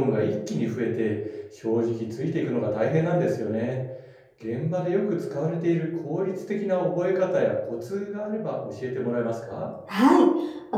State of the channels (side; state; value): both; identical; correlation 1.00